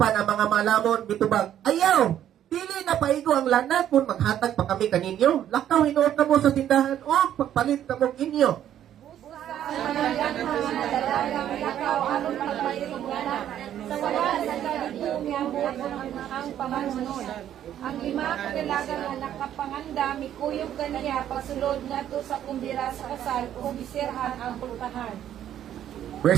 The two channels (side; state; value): left; quieter; 10.9 dB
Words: ang mga malamon bitubag, ayaw, dili na paigo ang lana kung maghatag pa kami kaninyo. Lakaw hinuot na mo sa tindahan o pagpalit na mo inyo. Lakaw aron pagpalit sa wala sa kadidiyong ang pamanunod. Ang lima kailangan na nakapanganda, mikuyog kaniya, pasulod na to sa kumbira sa kasal, o bisirhan ang pultahan.